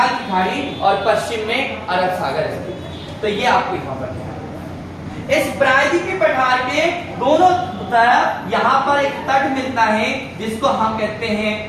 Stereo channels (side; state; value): both; identical; correlation 1.00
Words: की खाड़ी और पश्चिम में अरब सागर स्थित। तो ये आपको यहाँ पर है। इस प्रायद्वीपीय पठार के दोनों तरफ यहाँ पर एक तट मिलता है जिसको हम कहते हैं